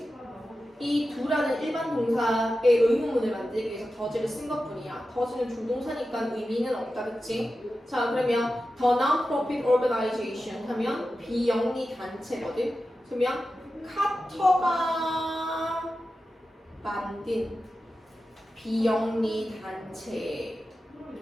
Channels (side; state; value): both; normal; correlation 0.92